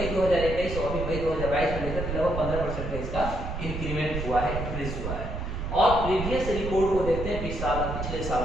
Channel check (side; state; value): right; noise; rumble, 5 dB below the sound